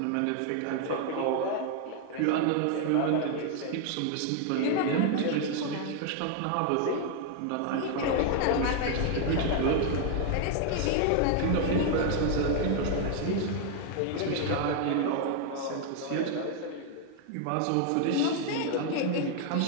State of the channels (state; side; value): different; both; correlation 0.00